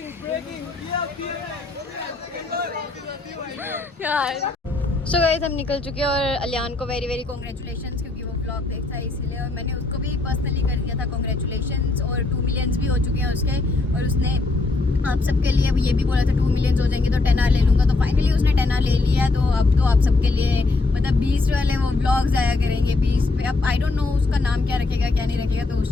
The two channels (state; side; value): quieter; right; 3.4 dB